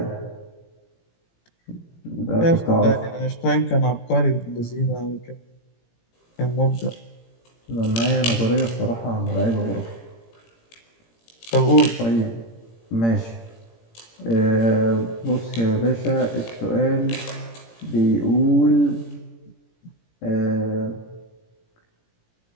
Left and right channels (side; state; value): right; late; 17 ms